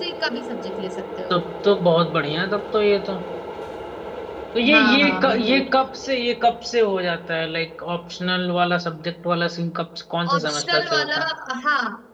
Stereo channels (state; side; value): identical; both; correlation 1.00